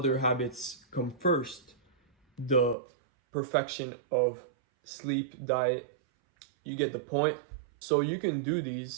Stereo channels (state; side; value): drops out; left; at 2.8 s